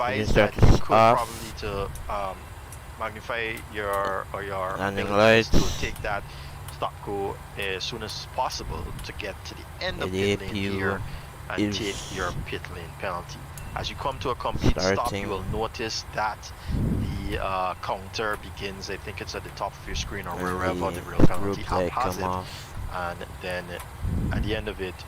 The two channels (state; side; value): identical; both; correlation 1.00